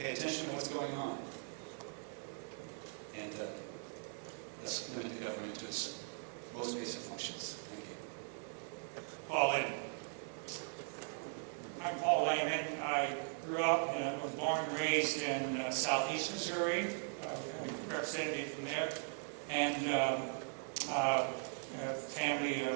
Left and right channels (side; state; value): left; silent; 51 dB below the other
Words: attention to what's going on, and let's limit the government to its most basic functions. Thank you. Paul Lehman. I'm Paul Lehman. I grew up and was born and raised in southeast Missouri. We got a representative from there. And a family